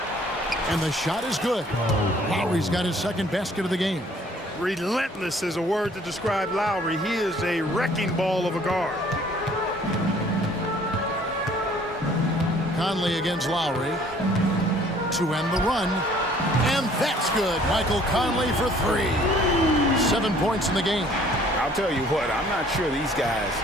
And the shot is good. Lowry's got his 2nd basket of the game. Relentless is a word to describe Lowry. He is a wrecking ball of a guard. Conley against Lowry to end the run. And that's good. Michael Conley for 3. 7 points in the game. I'll tell you what, I'm not sure these guys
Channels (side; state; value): both; normal; correlation 0.57